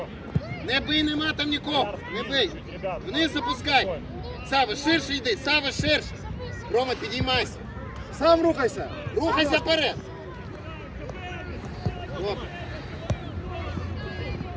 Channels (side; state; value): both; identical; correlation 1.00